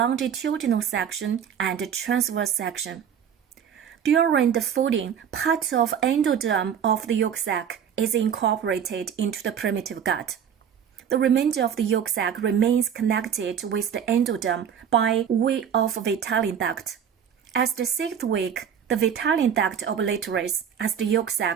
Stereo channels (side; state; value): left; quieter; 8.2 dB